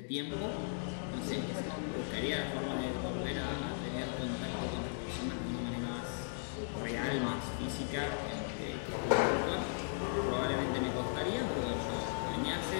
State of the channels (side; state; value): right; silent; digital silence